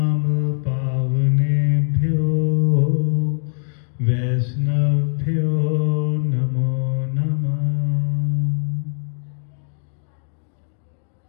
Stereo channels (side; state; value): right; silent; digital silence